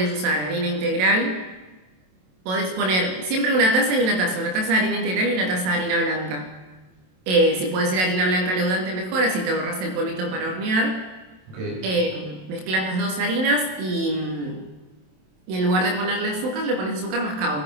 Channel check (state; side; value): late; left; 27 ms